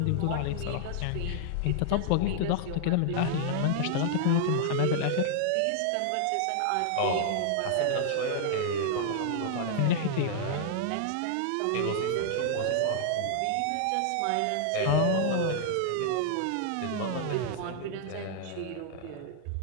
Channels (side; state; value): both; different; correlation -0.01